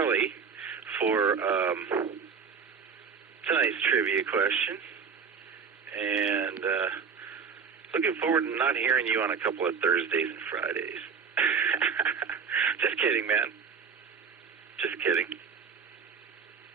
for tonight's trivia question. And looking forward to not hearing you on a couple of Thursdays and Fridays. Just kidding, man. Just kidding.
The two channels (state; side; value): quieter; left; 6.1 dB